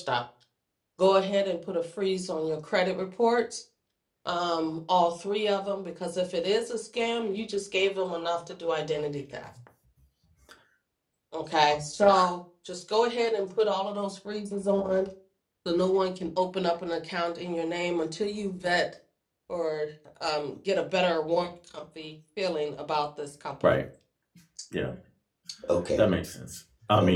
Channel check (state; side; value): identical; both; correlation 1.00